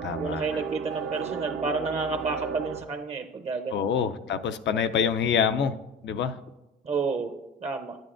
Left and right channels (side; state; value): both; normal; correlation 0.33